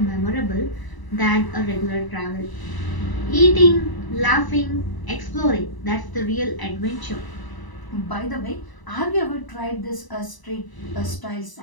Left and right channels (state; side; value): late; right; 1.0 ms